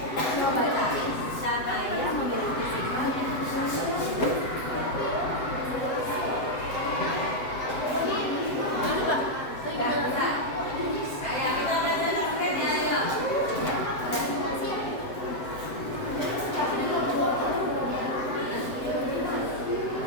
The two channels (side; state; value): right; late; 7.8 ms